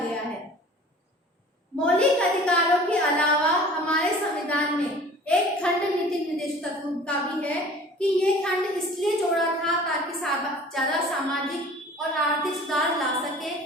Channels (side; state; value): both; normal; correlation 0.46